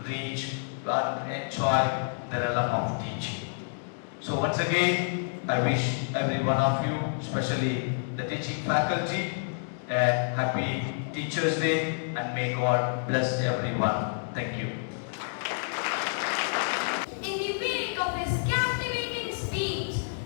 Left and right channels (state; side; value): silent; right; digital silence